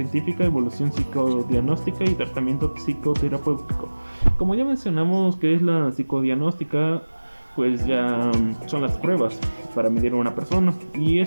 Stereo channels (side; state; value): both; inverted; correlation -1.00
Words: evolución psicodiagnóstica y tratamiento psicoterapéutico. Como ya mencionamos que es la psicodiagnóstica, pues ya son las pruebas para medir a una persona, y